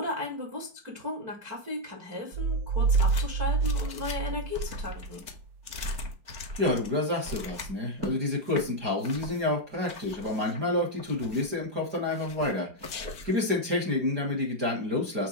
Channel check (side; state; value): left; late; 4.9 ms